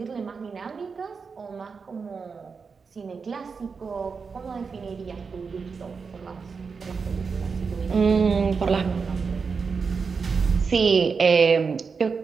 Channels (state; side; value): quieter; left; 5.3 dB